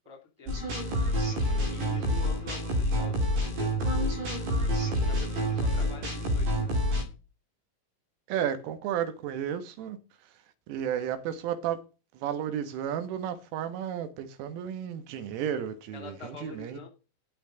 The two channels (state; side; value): late; left; 17 ms